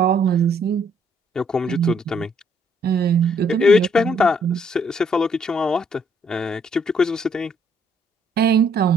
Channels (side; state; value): both; normal; correlation 0.67